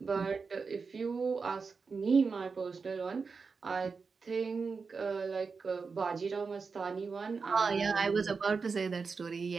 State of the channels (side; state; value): left; quieter; 4.9 dB